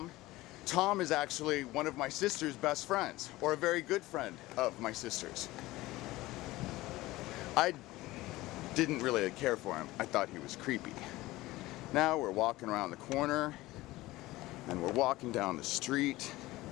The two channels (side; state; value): right; quieter; 18.5 dB